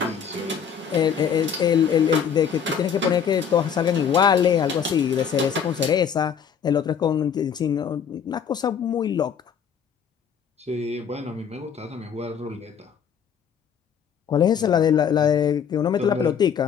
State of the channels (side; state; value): right; quieter; 7.5 dB